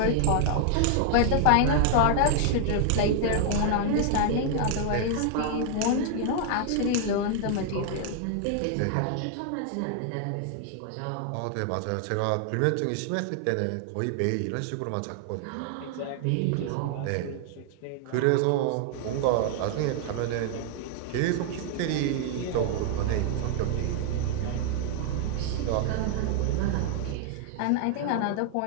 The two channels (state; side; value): different; both; correlation 0.00